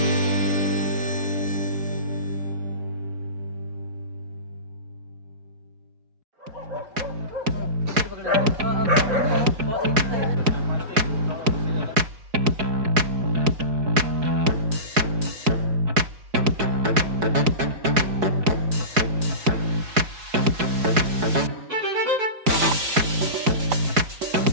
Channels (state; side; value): late; left; 4.7 ms